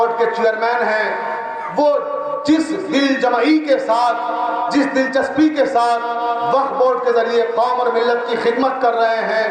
کے چیئرمین ہیں، وہ جس دل جمعی کے ساتھ، جس دلچسپی کے ساتھ وقف بورڈ کے ذریعے قوم اور ملت کی خدمت کر رہے ہیں،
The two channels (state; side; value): identical; both; correlation 1.00